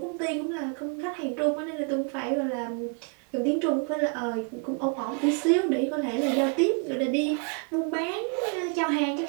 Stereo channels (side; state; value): left; quieter; 38.9 dB